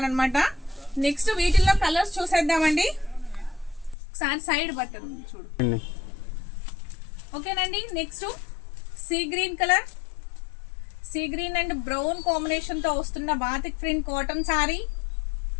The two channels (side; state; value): right; drops out; at 4.0 s